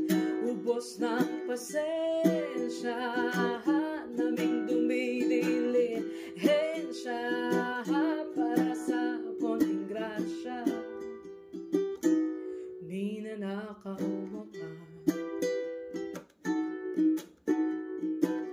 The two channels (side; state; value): both; identical; correlation 1.00